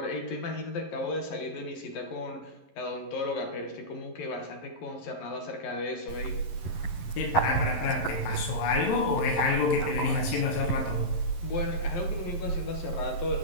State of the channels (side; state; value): right; late; 11 ms